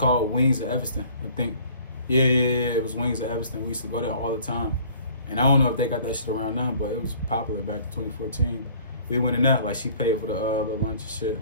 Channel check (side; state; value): both; inverted; correlation -0.52